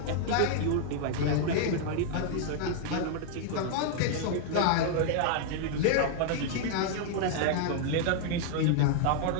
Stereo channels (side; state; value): both; different; correlation -0.01